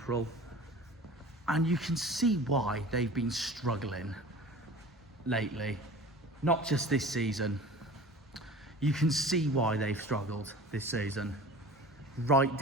And you can see why they've been struggling lately. Not just this season. You can see why they've struggled this season. Right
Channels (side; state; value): both; normal; correlation 0.40